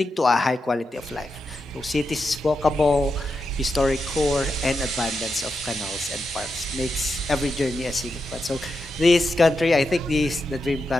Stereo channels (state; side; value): normal; both; correlation 0.86